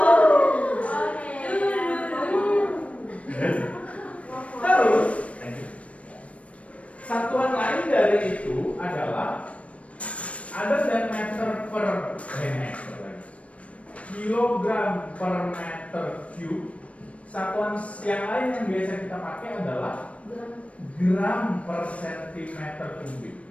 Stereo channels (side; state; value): right; late; 0.064 ms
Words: Terus, satuan lain dari itu adalah ada dan meter per kilogram per meter cube. Satuan yang lain yang biasa kita pakai adalah gram per sentimeter kubik.